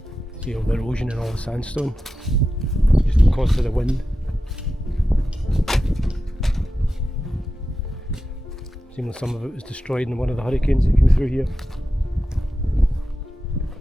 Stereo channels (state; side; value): normal; both; correlation 0.92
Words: See all the erosion and all the sandstone, just because of the wind. Seems like some of it was destroyed in one of the hurricanes that came through here.